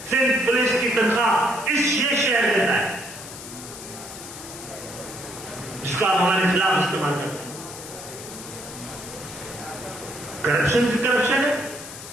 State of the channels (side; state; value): left; noise; hiss, 13 dB below the sound